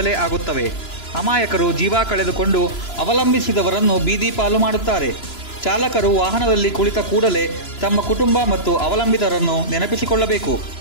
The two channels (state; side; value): late; right; 3.0 ms